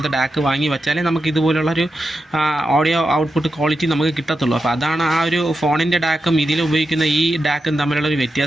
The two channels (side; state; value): both; normal; correlation 0.89